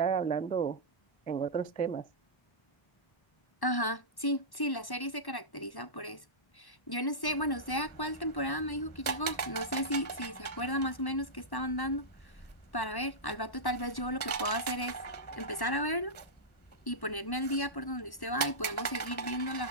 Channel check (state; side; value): late; right; 1.1 ms